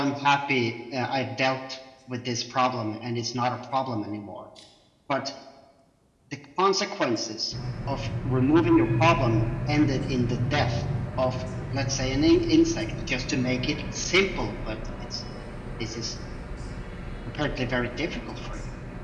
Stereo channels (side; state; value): both; identical; correlation 1.00